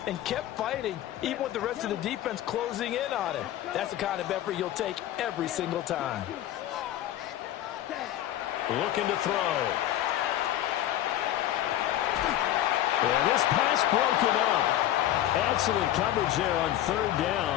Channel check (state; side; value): quieter; right; 12.9 dB